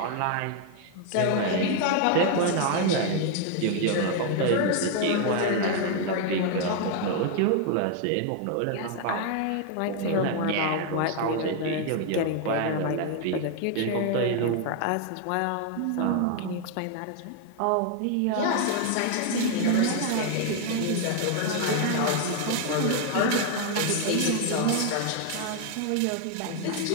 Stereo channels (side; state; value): both; different; correlation 0.00